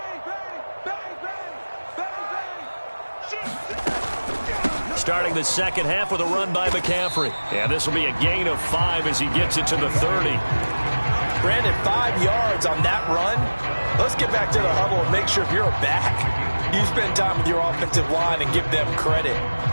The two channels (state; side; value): inverted; both; correlation -1.00